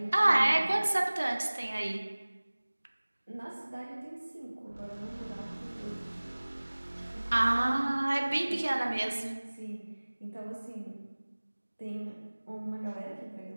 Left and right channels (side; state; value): both; inverted; correlation -1.00